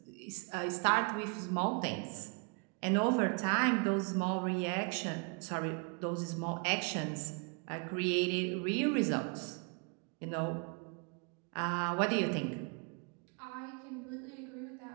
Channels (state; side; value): quieter; left; 35.5 dB